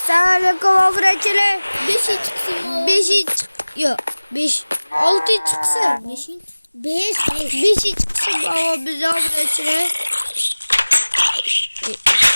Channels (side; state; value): both; inverted; correlation -1.00